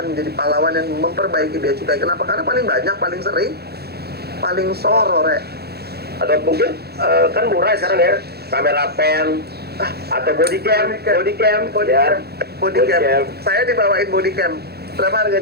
menjadi pahlawan yang memperbaiki bea cukai. Kenapa? Karena paling banyak, paling sering, paling soro, Rek. Atau mungkin kan murah sekarang ya, kamera pen, atau body cam. Body cam. Saya dibawain body cam. Berapa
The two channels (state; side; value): late; left; 0.46 ms